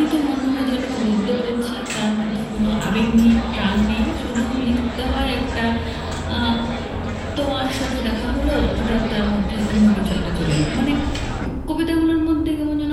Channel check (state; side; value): identical; both; correlation 1.00